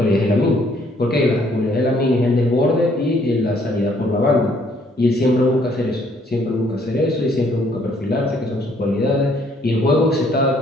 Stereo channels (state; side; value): normal; both; correlation 0.65